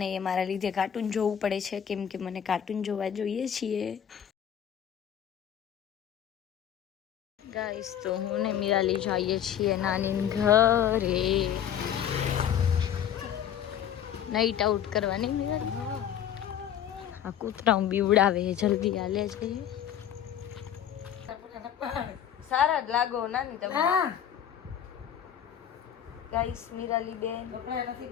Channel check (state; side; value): quieter; right; 9.6 dB